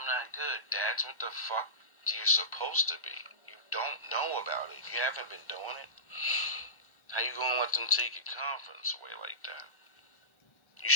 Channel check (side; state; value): right; late; 1.3 ms